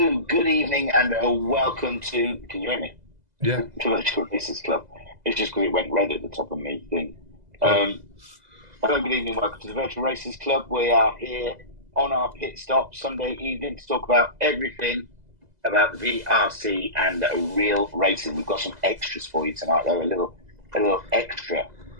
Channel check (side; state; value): left; late; 2.0 ms